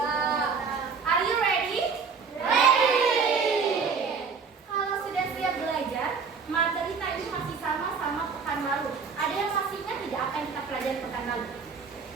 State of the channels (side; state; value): left; quieter; 5.4 dB